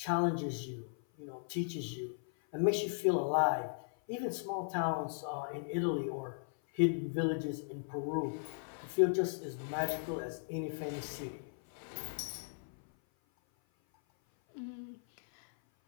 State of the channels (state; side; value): silent; right; 53 dB below the other